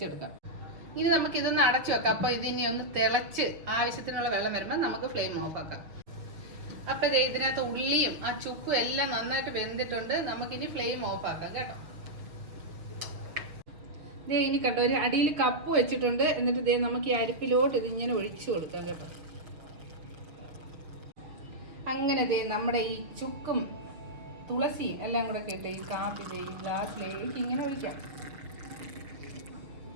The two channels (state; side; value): late; left; 6.4 ms